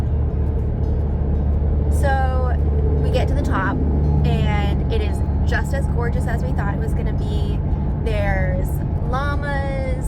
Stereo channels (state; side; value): identical; both; correlation 1.00